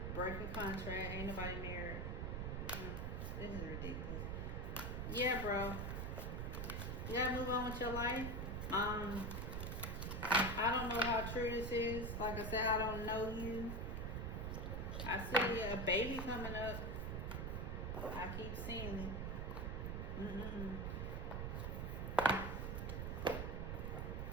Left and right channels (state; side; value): noise; right; rumble, 2 dB below the sound